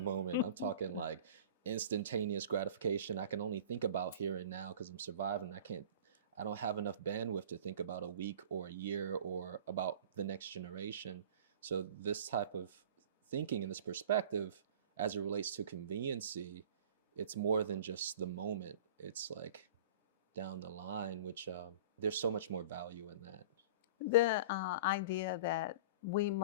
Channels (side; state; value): both; inverted; correlation -0.40